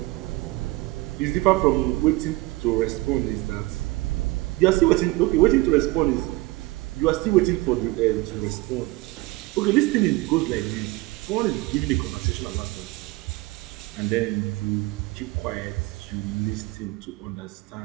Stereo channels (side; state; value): left; quieter; 21.4 dB